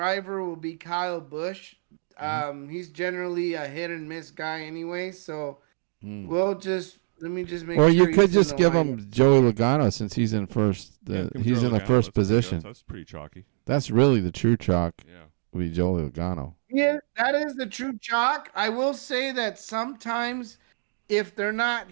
will be Kyle Busch. He's generally a hit and miss guy anyway, so we'll just let me just make Or sure. you could he's in just the give lineup. him Joey Logano since he's in first. Yeah, give him he's Joey in the Logano. first That's pretty good. position. That's pretty chalky. That's really the true chalk. Yeah. Would be Joey Logano. Yeah, that is the true chalk. I will say that sometimes if they're not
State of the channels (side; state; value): left; silent; digital silence